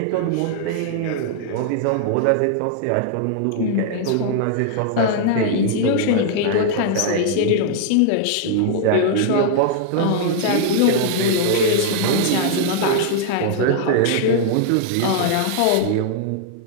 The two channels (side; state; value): both; different; correlation -0.01